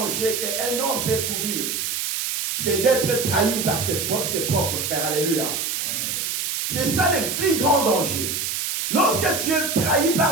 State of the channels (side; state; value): right; noise; hiss, 2 dB below the sound